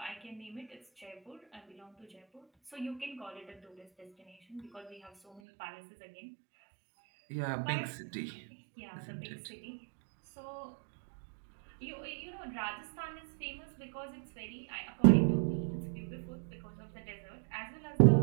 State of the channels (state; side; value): drops out; left; at 5.4 s